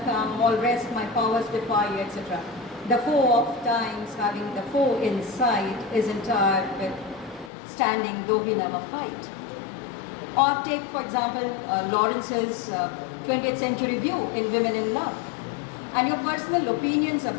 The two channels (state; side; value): drops out; right; at 7.5 s